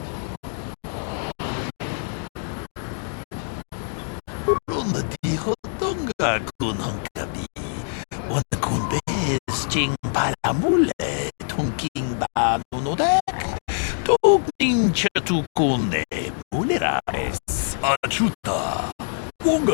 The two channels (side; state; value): right; silent; digital silence